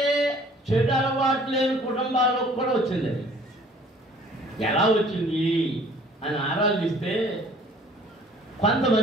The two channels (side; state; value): both; normal; correlation 0.54